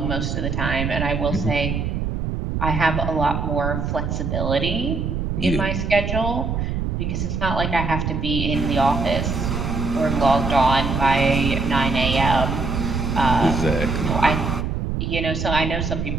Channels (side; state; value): right; noise; rumble, 2 dB below the sound